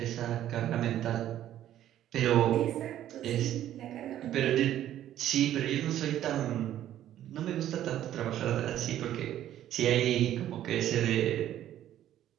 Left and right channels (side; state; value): left; quieter; 12.0 dB